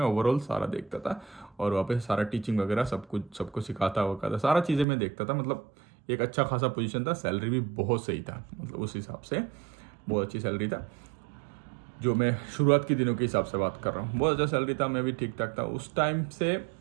ओवरऑल सारा देखता था, और वहाँ पे सारा टीचिंग वगैरह सब कुछ सबको सिखाता वकाता, सारा चीज़ें मैं देखता था। मतलब एक अच्छा खासा पोजीशन था, सैलरी भी बहुत सही था, मतलब उस हिसाब से बहुत अच्छी सैलरी था। जो मैं शुरुआत के दिनों के हिसाब से बात कर रहा हूँ, बहुत अच्छा सैलरी था, मैं भी ठीक ठाक था उस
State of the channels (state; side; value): drops out; left; at 4.9 s